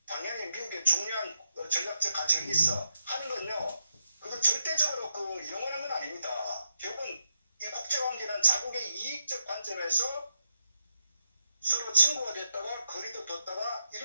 당연히 미국의 중요한 전략적 가치가 있어 하는 건요. 그건 절대적으로 영원한 건 아닙니다. 결국은 이 국제관계는 자국의 이익적 관점에서 서로 친구가 됐다가 거리도 뒀다가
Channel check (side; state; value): both; inverted; correlation -0.83